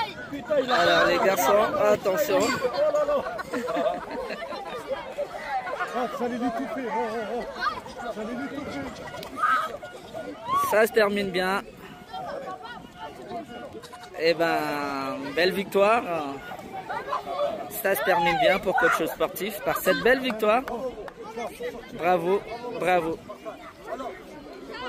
Putain, il a... Alors les garçons, attention. J'allais lui couper. J'allais lui couper. Ça se termine bien. Eh ben, belle victoire. Ça se termine bien pour Coach Sportif par cette belle victoire. Bravo, bravo.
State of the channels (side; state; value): both; identical; correlation 1.00